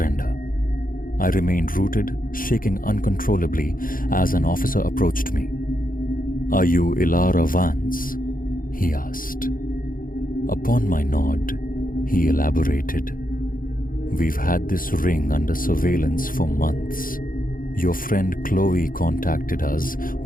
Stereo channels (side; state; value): right; late; 0.40 ms